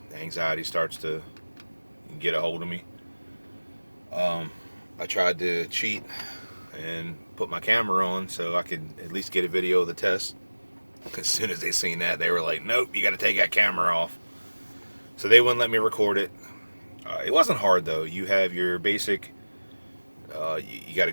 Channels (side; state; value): both; inverted; correlation -1.00